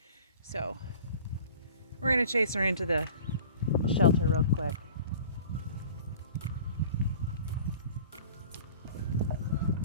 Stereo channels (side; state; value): both; inverted; correlation -0.45